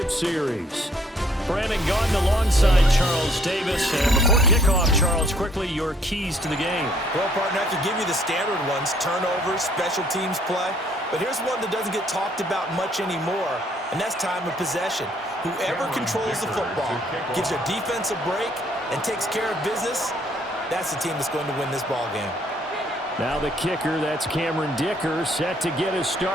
series. Brandon Gaudin alongside Charles Davis. And before kickoff, Charles, quickly your keys to the game. Well, partner, I could give you the standard ones, turnovers, special teams play. But here's one that doesn't get talked about much anymore, and that's time of possession. Whoever controls the football, gives their defense a break, and takes care of business, that's the team that's going to win this ball game. Now the kicker, that's Cameron Dicker, set to get us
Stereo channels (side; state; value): both; normal; correlation 0.64